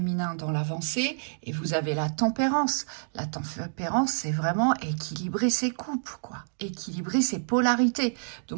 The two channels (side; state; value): left; silent; digital silence